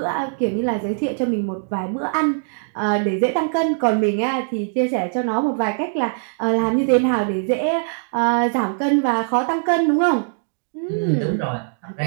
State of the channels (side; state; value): left; silent; digital silence